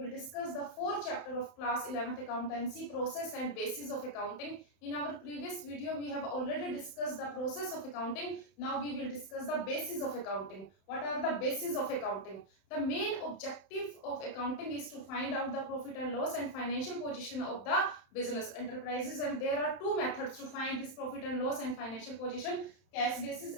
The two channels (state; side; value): late; right; 31 ms